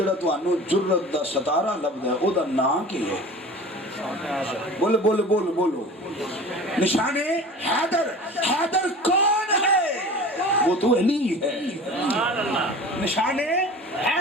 تانوں جرت دا ستارہ لبدا ہے او دا نام کی ہے؟ بولو بولو بولو بولو، نشان حیدر۔ حیدر کون ہے؟ وہ تو علی ہے، نشان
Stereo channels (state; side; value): normal; both; correlation 0.38